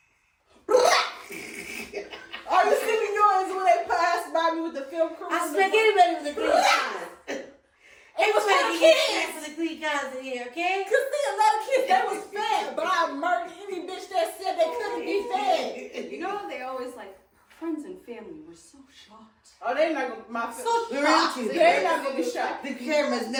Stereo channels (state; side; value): identical; both; correlation 1.00